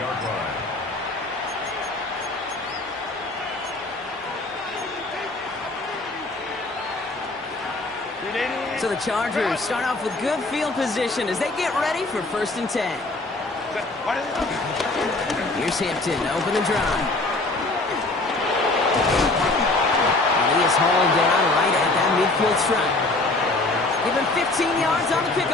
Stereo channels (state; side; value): quieter; right; 3.0 dB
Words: line. So the Chargers start off with good field position as they get ready for first and 10. Here's Hampton to open the drive. He is hauled down right at that midfield stripe. Give him 15 yards on the